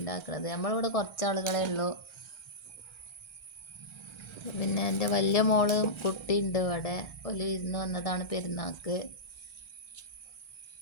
ഉണ്ടാക്കുന്നത്. നമ്മളിവിടെ കുറച്ച് ആളുകളേ ഉള്ളൂ. പിന്നെ എൻ്റെ വലിയ മോള് കുട്ടിയുണ്ട് ഇവിടെ. ഒരു ഇരുന്ന് വന്നതാണ് പെരുന്നാൾക്ക്.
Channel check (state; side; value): late; right; 1.3 ms